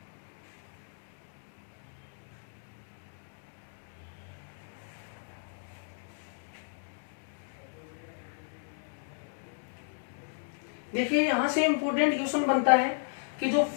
देखिए यहां से इंपोर्टेंट क्वेश्चन बनता है कि जो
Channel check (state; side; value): silent; right; digital silence